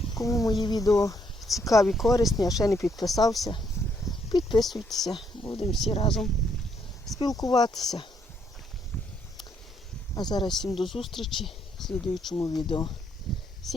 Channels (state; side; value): normal; both; correlation 0.72